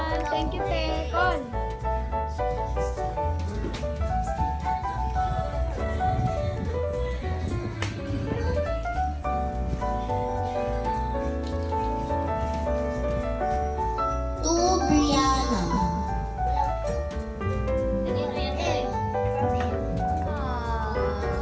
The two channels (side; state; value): both; identical; correlation 1.00